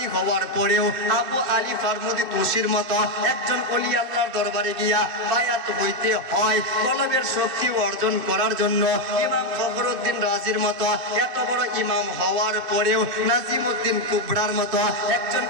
হওয়ার পরেও আবু আলী ফারমুদি তুসির মতো একজন ওলি আল্লাহর দরবারে গিয়া বায়াত হইতে হয়। কলবের শক্তি অর্জন করার জন্য ইমাম ফখরুদ্দিন রাজির মতো এত বড় ইমাম হওয়ার পরেও নাজিমউদ্দিন কুবরার মতো একজন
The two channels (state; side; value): late; left; 2.6 ms